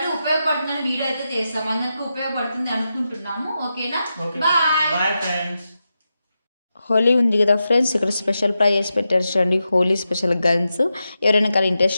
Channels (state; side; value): inverted; both; correlation -0.89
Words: ఉపయోగపడుతుందని వీడియో అయితే చేస్తాం, అందరికి ఉపయోగపడుతుంది అనుకుంటున్నాము. ఓకేనా, బాయ్. Bye friends. హోలీ ఉంది కదా ఫ్రెండ్స్, ఇక్కడ స్పెషల్ ప్రైజెస్ పెట్టారు చూడండి, హోలీ స్పెషల్ గన్స్. ఎవరైనా కానీ ఇంట్రెస్ట్